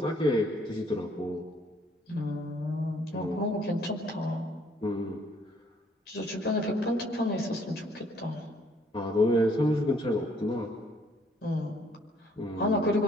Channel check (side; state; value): both; normal; correlation 0.64